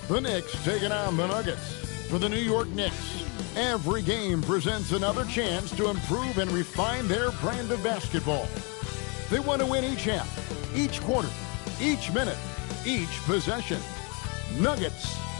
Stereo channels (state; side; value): quieter; right; 33.0 dB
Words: the Knicks taking on the Nuggets. For the New York Knicks, every game presents another chance to improve and refine their brand of basketball. They want to win each half, each quarter, each minute, each possession. Nuggets,